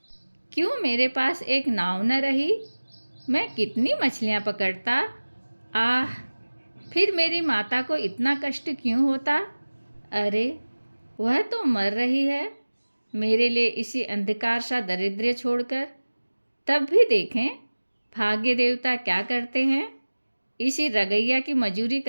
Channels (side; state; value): both; inverted; correlation -1.00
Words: क्यों मेरे पास एक नाव न रही? मैं कितनी मछलियाँ पकड़ता। आह, फिर मेरी माता को इतना कष्ट क्यों होता? अरे, वह तो मर रही है मेरे लिए इसी अंधकार सा दरिद्र छोड़कर। तब भी देखें भाग्य देवता क्या करते हैं। इसी रगैया की मजूरी